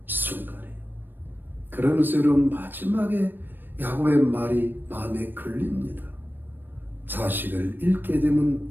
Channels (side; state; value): left; late; 0.094 ms